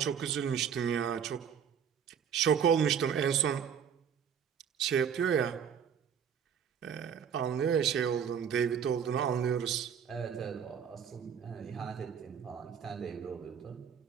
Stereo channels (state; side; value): quieter; left; 7.8 dB